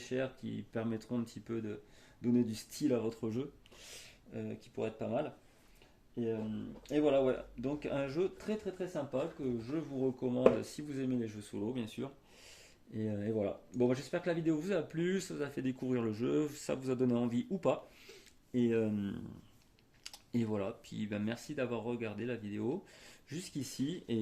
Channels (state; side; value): identical; both; correlation 1.00